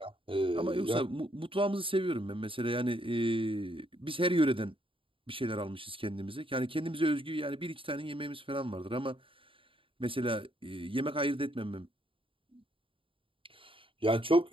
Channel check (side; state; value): left; late; 0.25 ms